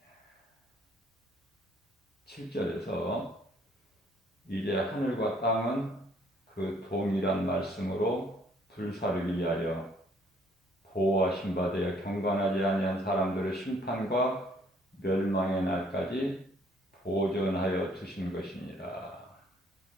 7절에서 이제 하늘과 땅은 그 동일한 말씀으로 불사르기 위하여 보호하신 바 되어 경건하지 아니한 사람들의 심판과 멸망의 날까지 보존하여 두신 것이니라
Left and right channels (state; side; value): normal; both; correlation 0.62